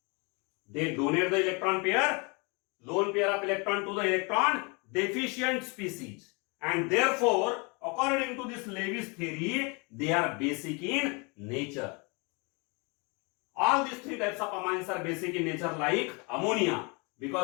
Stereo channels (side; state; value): right; quieter; 30.9 dB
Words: They donate the electron pair, lone pair of electron to the electron deficient species. And therefore, according to this Lewis theory, they are basic in nature. All these three types of amines are basic in nature like ammonia